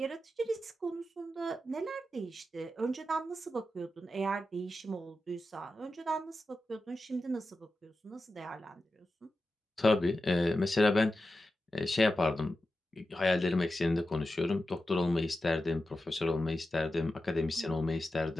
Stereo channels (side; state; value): both; normal; correlation 0.91